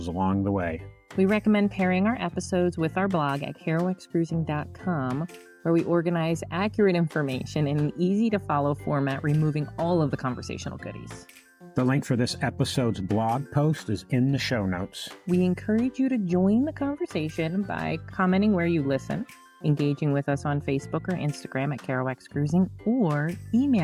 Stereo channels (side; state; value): both; identical; correlation 1.00